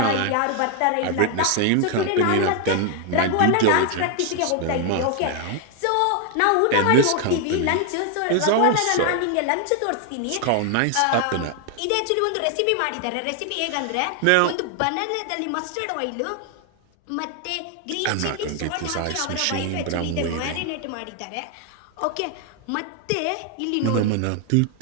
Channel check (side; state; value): both; different; correlation 0.00